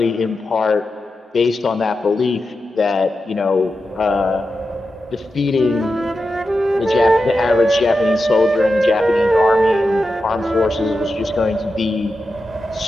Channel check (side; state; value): both; normal; correlation 0.90